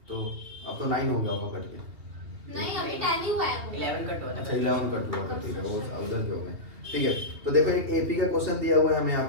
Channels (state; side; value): late; left; 2.8 ms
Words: तो अब तो 9 हो गया होगा कट के। नहीं अभी 10 ही हुआ है। 11 कट हुआ था। अच्छा 11 कट हुआ था, ठीक है, वो उधर के हो गए। ठीक है, तो देखो एक एपी का क्वेश्चन दिया हुआ है हमें यहाँ